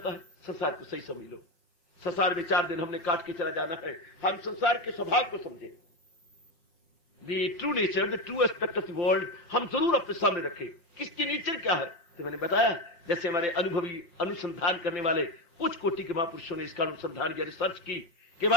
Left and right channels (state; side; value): late; right; 5.5 ms